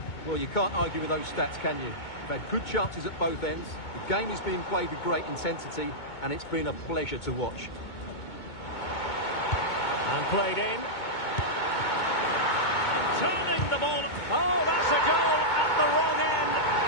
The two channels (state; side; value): late; right; 2.2 ms